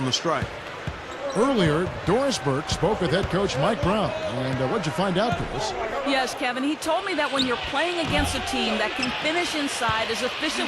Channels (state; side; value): identical; both; correlation 1.00